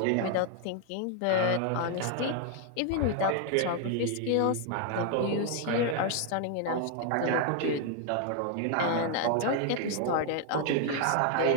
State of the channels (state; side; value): different; both; correlation 0.00